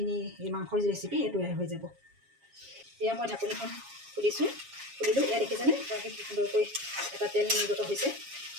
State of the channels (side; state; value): left; late; 7.3 ms